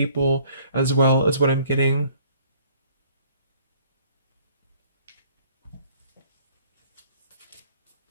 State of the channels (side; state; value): both; inverted; correlation -0.57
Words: as well as what I'm getting.